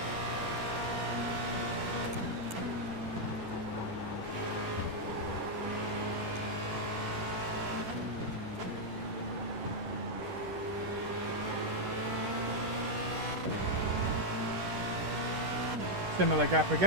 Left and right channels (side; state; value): left; late; 10 ms